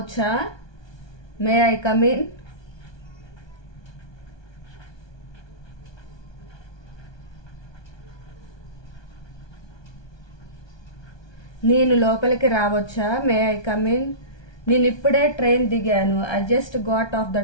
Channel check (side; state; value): right; late; 1.2 ms